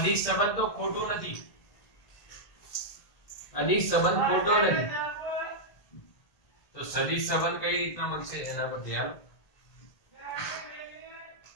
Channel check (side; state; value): right; late; 1.8 ms